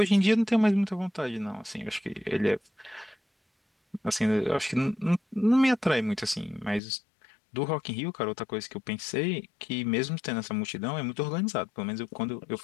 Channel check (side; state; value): right; drops out; at 6.8 s